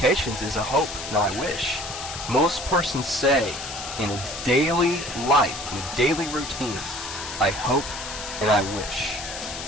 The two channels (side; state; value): left; noise; hiss, 8 dB below the sound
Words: is a hope, not a wish. Most persons say in a daily life, in a daily routine, I hope and I wish.